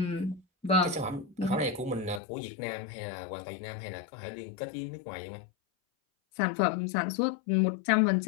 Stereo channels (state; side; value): drops out; right; at 2.2 s